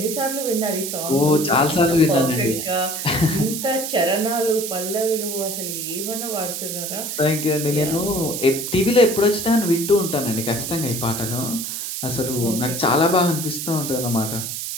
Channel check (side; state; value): right; noise; hiss, 5 dB below the sound